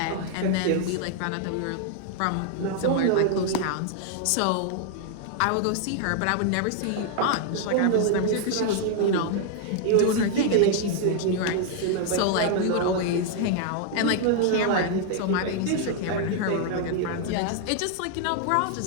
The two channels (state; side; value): different; both; correlation 0.00